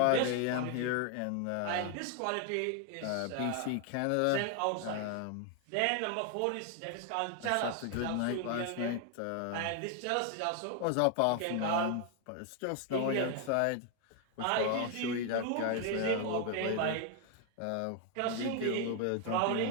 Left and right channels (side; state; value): both; different; correlation 0.00